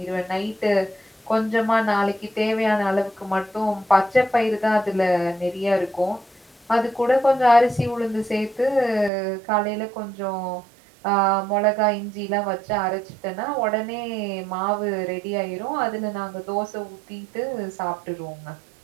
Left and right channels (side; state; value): left; drops out; at 9.1 s